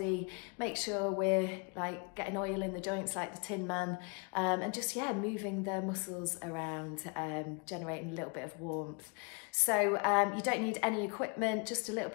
make sure we're like getting oil in the joints like the Tin Man, and just, yeah, moving the muscles around, generating a little bit of warmth. So you don't need any equipment, just a little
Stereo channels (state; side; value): quieter; right; 33.6 dB